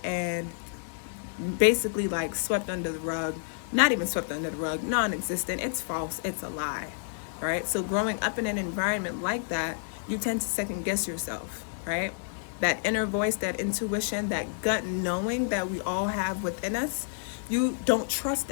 and basically like swept under the rug. Not even swept under the rug, non-existent. It's false, it's a lie, right? So growing up in an environment like that, you tend to second guess yourself, right? That inner voice, that intuition, that gut knowing that we all have within us, you don't trust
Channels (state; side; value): silent; right; digital silence